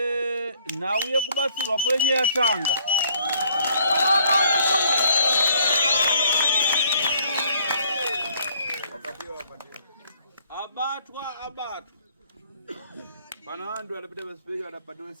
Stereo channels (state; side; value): inverted; both; correlation -0.63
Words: nhau yekubatsirwa kwenye yatanga. Abatwa. pana vantu vanopita pasipeki vanapatiwa